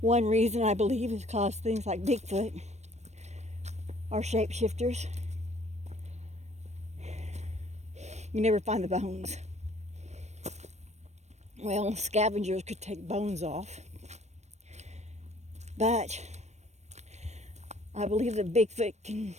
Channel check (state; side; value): late; left; 0.32 ms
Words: reason I believe is because things like Bigfoot are shapeshifters. You never find the bones. Well, scavengers could take bones off. But I believe that Bigfoot can